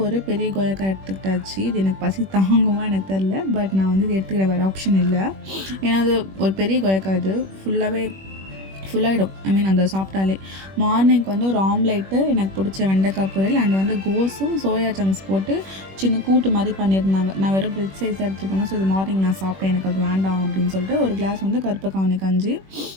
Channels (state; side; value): late; left; 21 ms